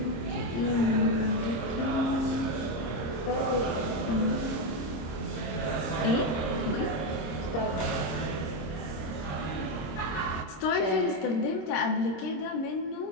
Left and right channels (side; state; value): right; late; 26 ms